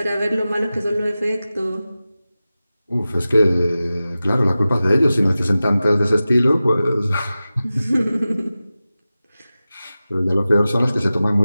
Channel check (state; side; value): inverted; both; correlation -0.95